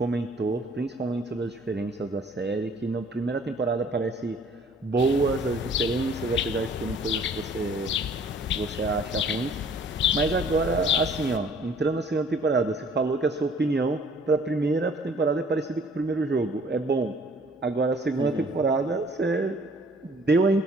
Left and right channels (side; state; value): both; normal; correlation 0.55